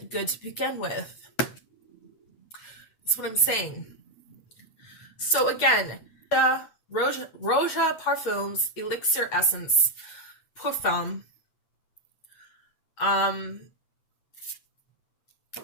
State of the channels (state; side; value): late; right; 8.3 ms